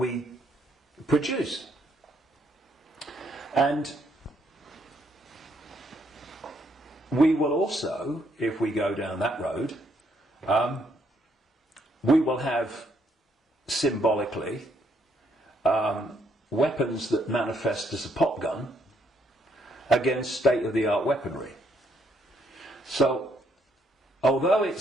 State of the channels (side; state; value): both; normal; correlation 0.72